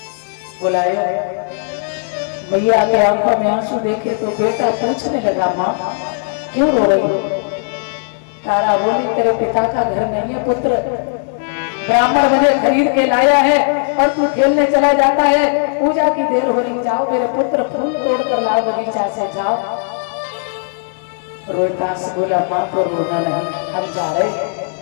बुलाया भैया के आंखों में आंसू देखे तो बेटा पूछने लगा माँ क्यों रो रही हो? तारा बोली तेरे पिता का घर नहीं है पुत्र, ब्राह्मण मुझे खरीद के लाया है और तू खेलने चला जाता है, पूजा की देर हो रही, जाओ मेरे पुत्र फूल तोड़ कर लाओ बगीचा से, जाओ। रोहितास बोला मां तो रोना नहीं, हम जा रहे,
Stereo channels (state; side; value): silent; right; digital silence